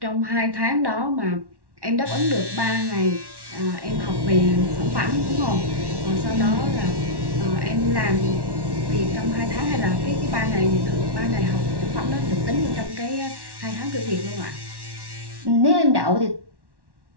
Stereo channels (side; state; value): left; late; 1.1 ms